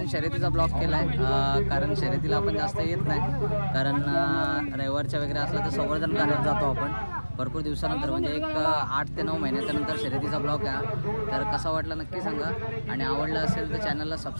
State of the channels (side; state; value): both; inverted; correlation -1.00